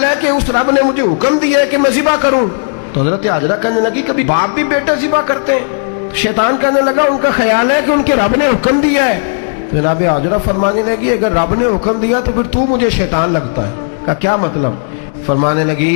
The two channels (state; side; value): silent; right; digital silence